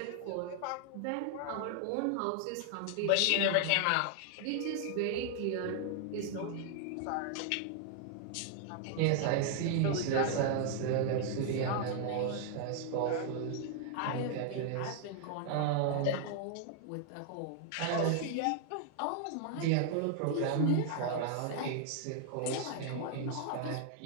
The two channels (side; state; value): both; different; correlation 0.00